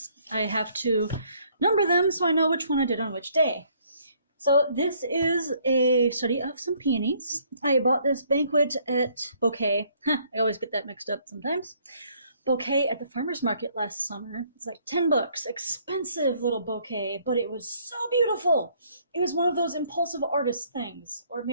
I have to number them so I know which one I did on which day. So this is a study of some peonies. I bought this bouquet. I always get that mixed up sometimes. Bouquet at the farmer's market last summer. It's like $10. Expensive little bouquet, but it was so beautiful. It was one of those impulsive artist things, or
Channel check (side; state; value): both; inverted; correlation -0.64